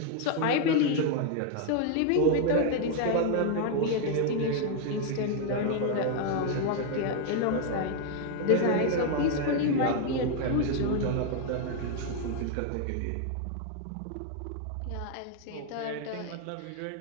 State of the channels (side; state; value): both; different; correlation 0.01